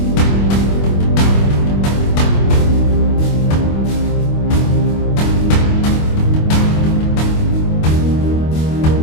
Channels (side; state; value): right; late; 25 ms